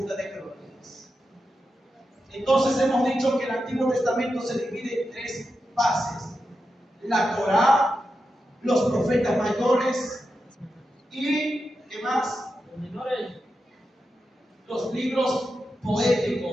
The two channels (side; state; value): both; normal; correlation 0.89